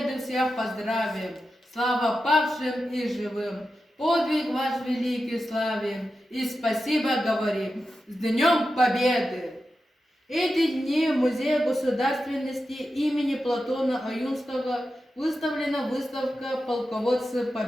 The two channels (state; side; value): normal; both; correlation 0.91